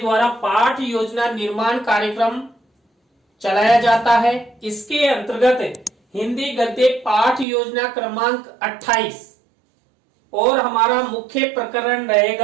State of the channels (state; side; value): drops out; left; at 7.5 s